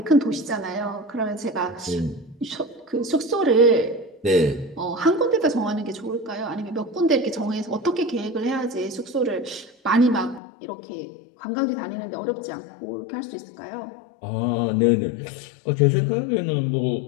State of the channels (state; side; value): drops out; right; at 10.4 s